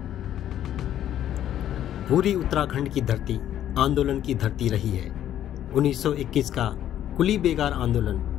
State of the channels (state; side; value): quieter; right; 11.3 dB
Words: पूरी उत्तराखंड की धरती आंदोलन की धरती रही है। 1921 का कुली बेगार आंदोलन,